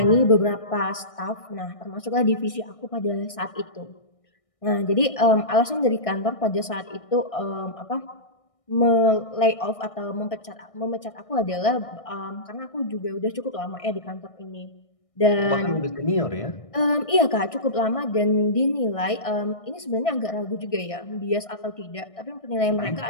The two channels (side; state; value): right; late; 1.6 ms